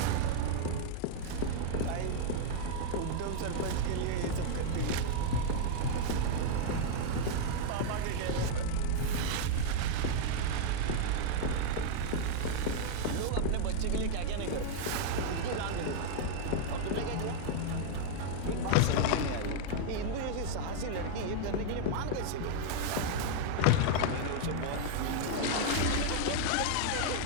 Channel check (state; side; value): different; both; correlation -0.01